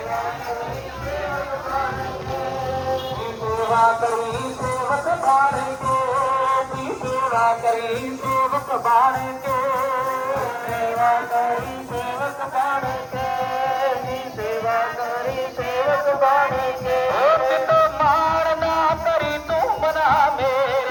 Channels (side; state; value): both; identical; correlation 1.00